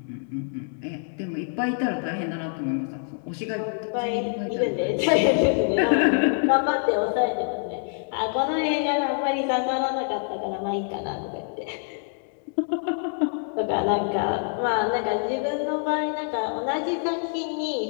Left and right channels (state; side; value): silent; right; 61 dB below the other